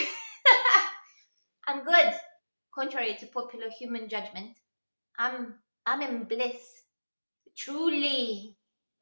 I'm good. Contrary to popular human judgment, I'm in bliss. Truly.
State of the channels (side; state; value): both; inverted; correlation -1.00